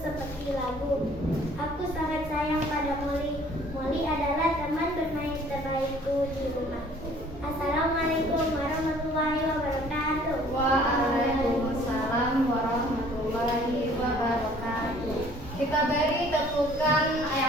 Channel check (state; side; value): normal; both; correlation 0.55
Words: seperti lagu. Aku sangat sayang pada Molly. Molly adalah teman bermain terbaikku di rumah. Assalamualaikum warahmatullahi wabarakatuh. Waalaikumsalam warahmatullahi wabarakatuh. Kita beri tepukan